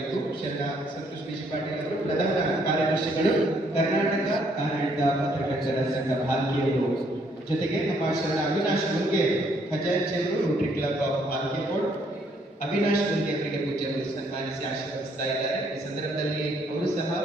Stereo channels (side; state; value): both; normal; correlation 0.68